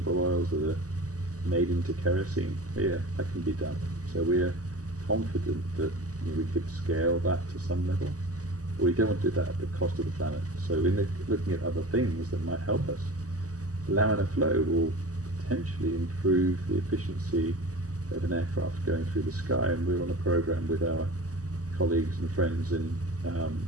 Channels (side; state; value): left; late; 0.66 ms